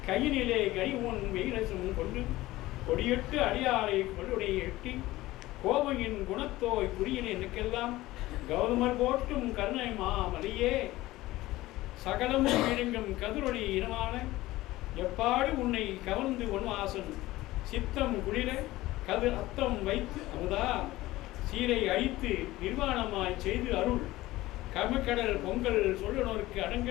கையினிலே கனி உன் வெயிலசும் கொண்டு கொடியெட்டு அடியாரை கொள்ளுடைய எட்டி கோபையின் குணத்தோய் புரியின் எனக்கெல்லாம் கௌதமர் போட்டும் கருணை மாமலையே சகலமும் விழுங்கும் கதிரொளி இனமான எப்பாடு உன்னை கவர்ந்து ஒன்வாசன் சித்தம் குளிர கது அத்தம் வைத்து அமுதா சீரை அழித்து நிர்வாணமாய் செய்து அருள் கமக்கடல் பொங்கல் சொல்லுனோருக்கு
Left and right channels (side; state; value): right; quieter; 17.6 dB